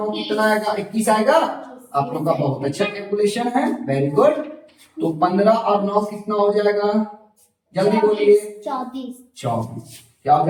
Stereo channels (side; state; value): both; identical; correlation 1.00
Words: कितना आएगा? 21 आएगा। आप लोग का बहुत अच्छा कैलकुलेशन है, वेरी गुड। तो 15 और 9 कितना हो जाएगा? जल्दी बोलिए। 24। क्या हो